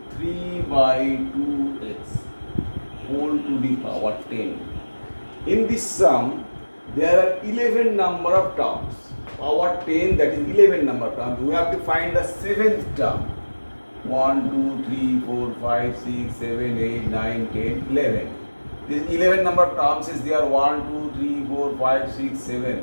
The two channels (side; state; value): both; inverted; correlation -1.00